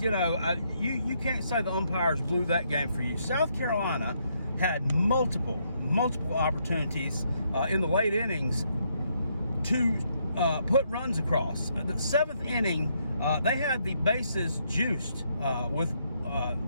you know, you can't say the umpires blew that game for you. South Carolina had multiple opportunities in the late innings to put runs across. The 7th inning, they had the bases juiced with,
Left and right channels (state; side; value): inverted; both; correlation -0.75